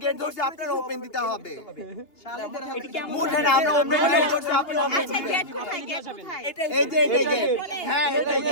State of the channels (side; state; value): right; late; 2.7 ms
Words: গেট ধরছি আপনারা ওপেন দিতে হবে মুঠে না আমরা ওপেন গেট ধরছি আপনারা ওপেন আচ্ছা গেট কোথায় এই যে গেট হ্যাঁ এটাই